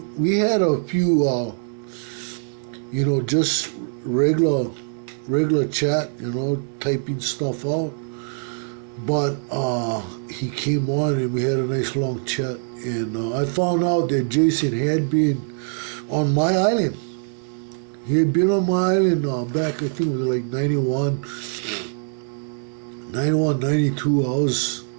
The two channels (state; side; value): silent; left; digital silence